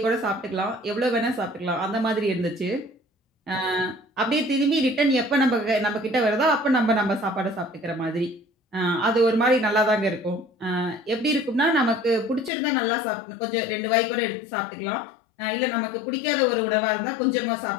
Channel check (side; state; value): right; drops out; at 12.5 s